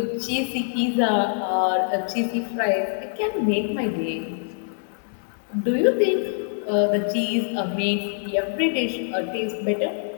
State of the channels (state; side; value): silent; right; digital silence